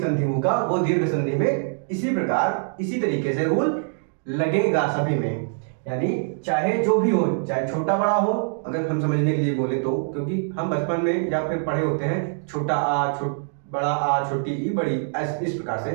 संधि होगा वो दीर्घ संधि में इसी प्रकार इसी तरीके से रूल लगेगा सभी में। यानी चाहे जो भी हो, चाहे छोटा बड़ा हो, अगर हम समझने के लिए बोले तो, क्योंकि हम बचपन में या फिर पढ़े होते हैं छोटा आ बड़ा आ, छोटी ई बड़ी इस प्रकार से,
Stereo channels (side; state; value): left; silent; digital silence